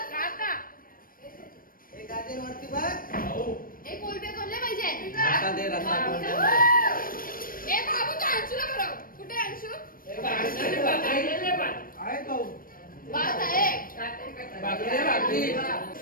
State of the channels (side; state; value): right; late; 0.41 ms